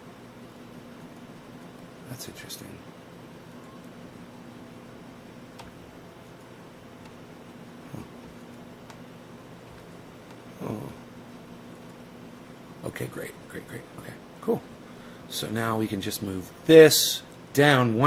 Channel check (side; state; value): both; identical; correlation 1.00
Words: That's interesting. Oh. Okay, great, great, great. Okay, cool. So now we can just move this down